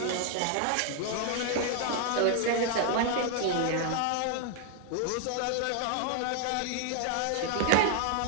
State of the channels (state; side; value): different; both; correlation 0.01